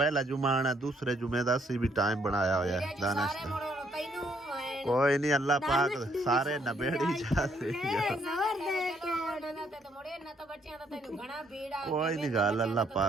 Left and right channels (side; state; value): both; normal; correlation 0.70